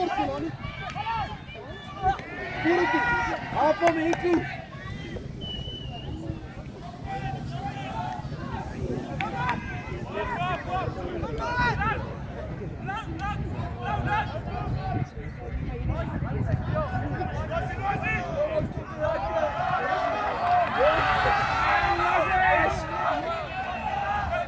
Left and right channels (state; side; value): identical; both; correlation 1.00